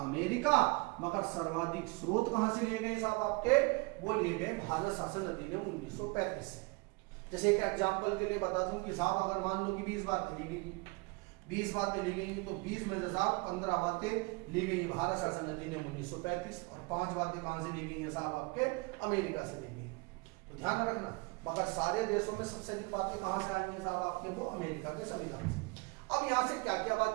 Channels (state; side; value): quieter; left; 27.5 dB